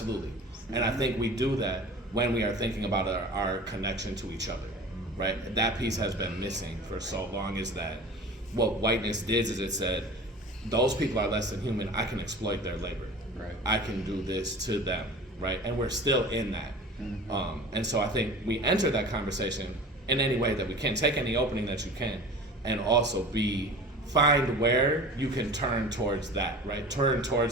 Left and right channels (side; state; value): both; normal; correlation 0.39